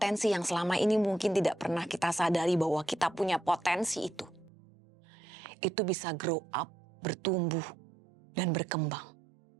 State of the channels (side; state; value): left; drops out; at 4.5 s